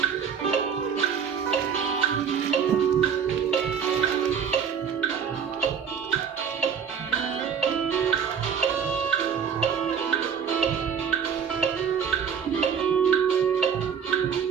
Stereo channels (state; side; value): quieter; left; 7.3 dB